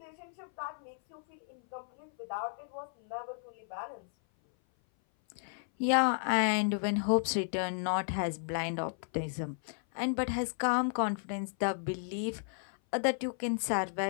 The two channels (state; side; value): silent; right; 55 dB below the other